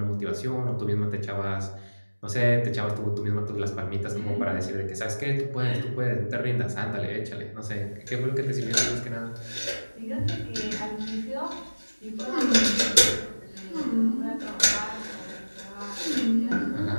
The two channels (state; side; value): inverted; both; correlation -1.00